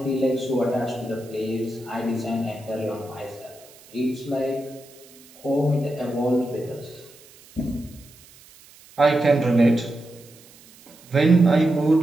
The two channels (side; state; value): right; noise; hiss, 24 dB below the sound